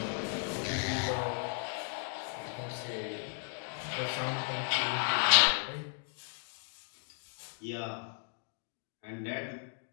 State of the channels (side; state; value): right; silent; 54 dB below the other